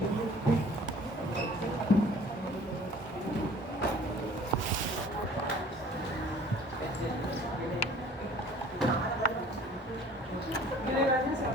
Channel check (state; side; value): normal; both; correlation 0.50